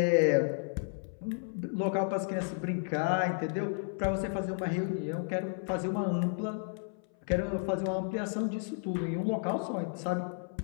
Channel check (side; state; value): right; silent; 56 dB below the other